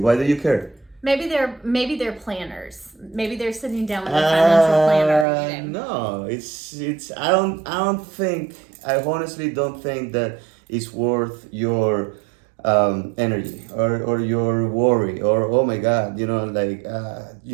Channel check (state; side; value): drops out; left; at 5.2 s